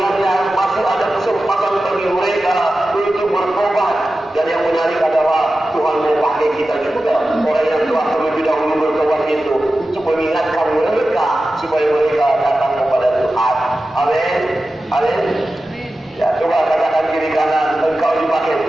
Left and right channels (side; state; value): both; normal; correlation 0.94